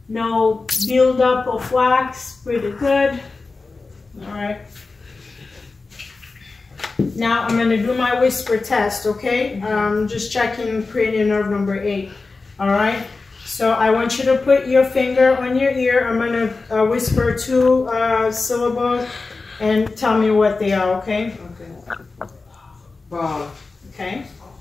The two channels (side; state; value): right; quieter; 3.9 dB